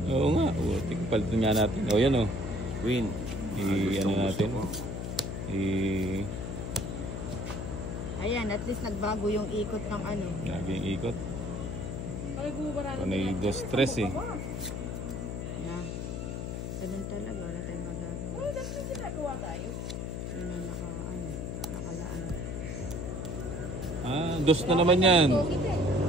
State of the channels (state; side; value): noise; left; hum, 4 dB below the sound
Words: Oo nga, putik. Palitan nga natin. O, yan o. Queen. Ano natin? Ayan, at least nagbago yung ikot ng ano. Lagi yung ikot. Ay, gumabaralo. Panay 2-3 eh. Na. Ganun talaga, wala tayong magagawa. Dati yung ginagawa tayo. Yun ang nakalaan. Ah, 2 na naman yan.